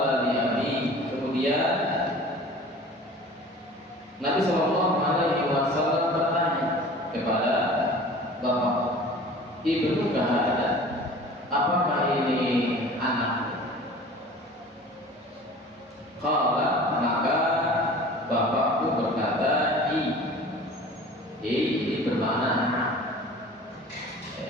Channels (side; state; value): both; normal; correlation 0.43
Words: li abi, kemudian Nabi sallallahu alaihi wasallam bertanya kepada bapak, ibnu kahada, apakah ini anak? Qala, maka bapakku berkata, ini bermakna anak.